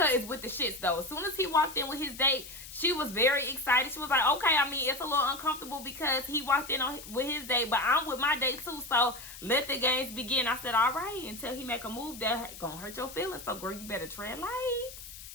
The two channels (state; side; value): noise; left; hiss, 14 dB below the sound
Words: is with the shits though. As soon as he walked in with his date, she was very excited. She was like, okay, I mean, it's a little uncomfortable because he walked in with his date, but I'm with my date too, so let the games begin. I said, all right, until he make a move that gonna hurt your feelings. So girl, you better tread light.